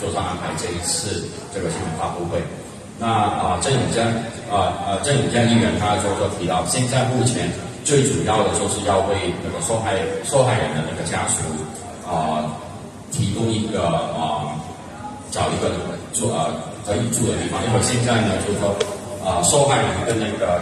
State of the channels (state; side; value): identical; both; correlation 1.00